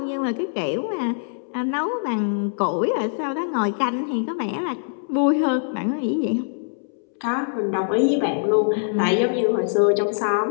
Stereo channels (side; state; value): right; silent; 63 dB below the other